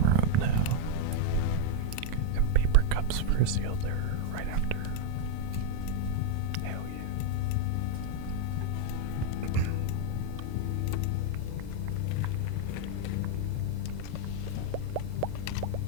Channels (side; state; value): both; different; correlation 0.01